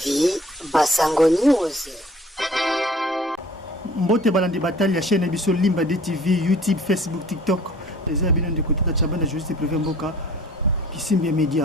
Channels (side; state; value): both; normal; correlation 0.50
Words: Basango News. Mbote balandi batali ya chaîne biso Limba de TV, YouTube, Facebook, TikTok. Les abonnés de côté de Chabana Justice Privé Mboka Kisimbi